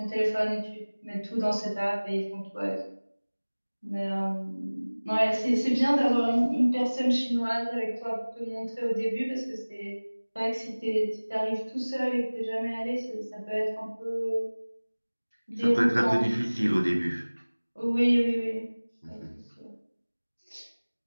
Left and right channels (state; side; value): inverted; both; correlation -1.00